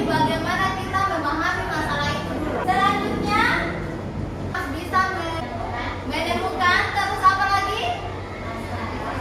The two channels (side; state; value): both; identical; correlation 1.00